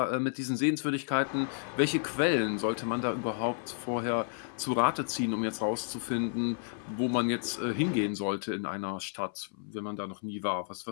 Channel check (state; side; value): silent; right; 56 dB below the other